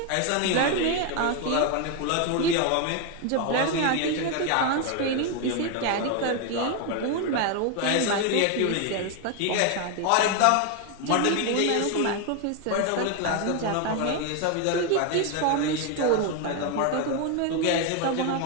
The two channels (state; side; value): different; both; correlation 0.01